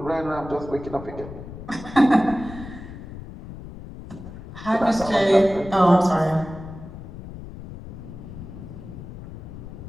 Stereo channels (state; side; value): noise; left; rumble, 13 dB below the sound